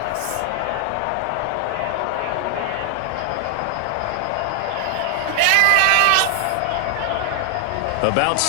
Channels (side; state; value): both; different; correlation 0.00